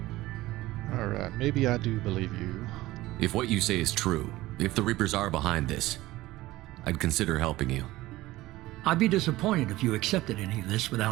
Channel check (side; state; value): left; quieter; 17.7 dB